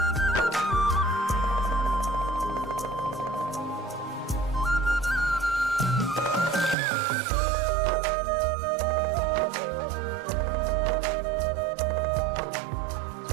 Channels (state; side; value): drops out; left; at 6.8 s